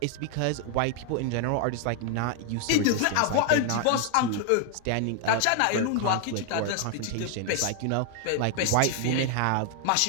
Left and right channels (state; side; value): different; both; correlation 0.00